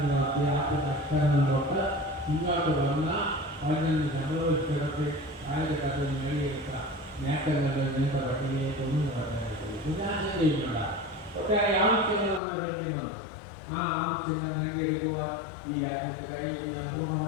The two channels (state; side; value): drops out; right; at 12.4 s